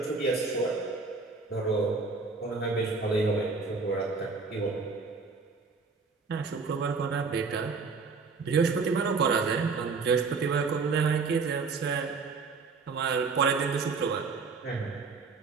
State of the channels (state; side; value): quieter; left; 4.6 dB